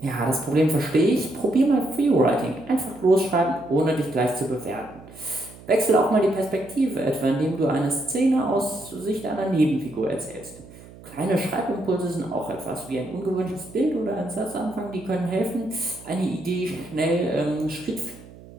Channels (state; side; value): noise; right; hum, 19 dB below the sound